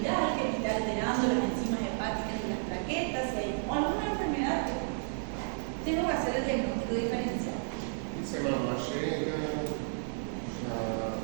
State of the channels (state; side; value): silent; left; digital silence